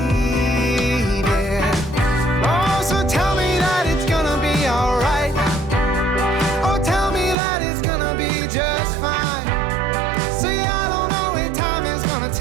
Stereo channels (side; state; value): left; drops out; at 7.4 s